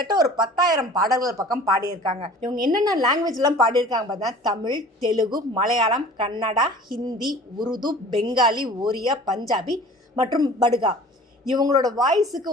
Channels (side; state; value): both; normal; correlation 0.45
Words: ஒரு 10,000 பாடல்கள் பக்கம் பாடியிருக்காங்க. இவங்க என்னென்ன லாங்குவேஜ்லாம் பாடியிருக்காங்க பார்த்தீங்கன்னா, தமிழ், தெலுங்கு, மலையாளம், கன்னடா, ஹிந்தி, உருது, பெங்காலி, ஒரியா, பஞ்சாபி மற்றும் படுகா. இவங்களோட வாய்ஸுக்கு